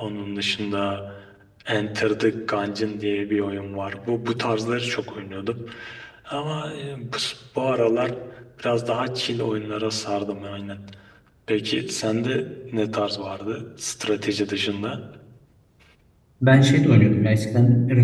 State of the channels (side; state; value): both; identical; correlation 1.00